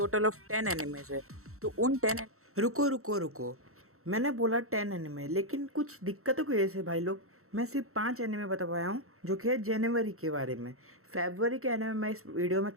ऑफ 10 एनिमेज है। तो उन 10 रुको रुको रुको। मैंने बोला 10 एनिमे, लेकिन कुछ दिक्कतों की वजह से भाई लोग मैं सिर्फ 5 एनिमे बता पाया हूँ, जो कि है जनवरी के बारे में। फरवरी के एनिमे मैं इस वीडियो में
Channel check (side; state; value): left; late; 0.63 ms